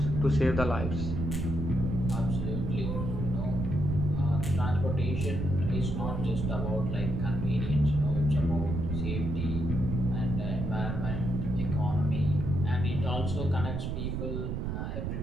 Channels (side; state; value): right; noise; rumble, 2 dB below the sound